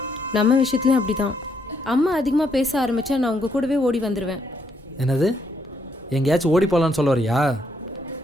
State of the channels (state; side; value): normal; both; correlation 0.74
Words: நம்ம விஷயத்துலையும் அப்படி தான். அம்மா அதிகமாக பேச ஆரம்பித்தா நான் உங்கள் கூடவே ஓடி வந்துடுவேன். என்னது? எங்கேயாச்சும் ஓடி போகலான்னு சொல்ல வரியா?